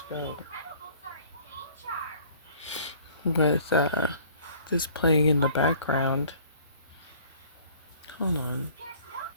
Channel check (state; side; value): inverted; both; correlation -0.53